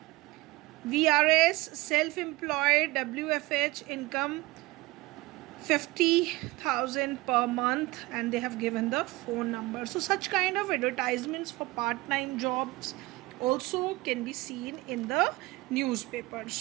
VRS, self-employed, WFH, income 50,000 per month, and they have given the phone number. So such kind of advertisements for part-time jobs also can be seen in the newspaper.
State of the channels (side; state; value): left; quieter; 20.9 dB